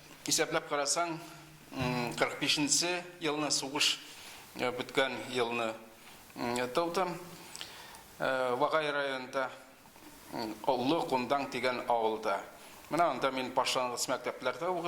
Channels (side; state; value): both; identical; correlation 1.00